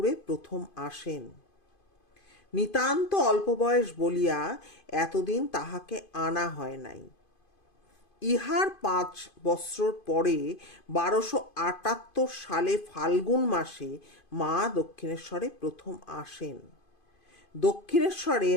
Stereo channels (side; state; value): right; late; 2.5 ms